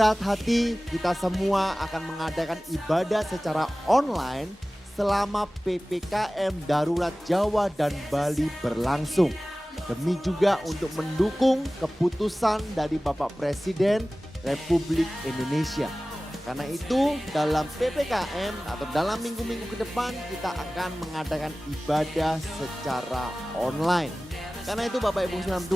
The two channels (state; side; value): normal; both; correlation 0.97